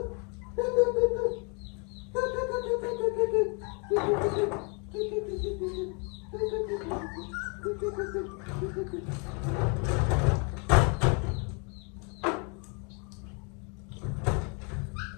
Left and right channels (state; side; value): quieter; right; 35.5 dB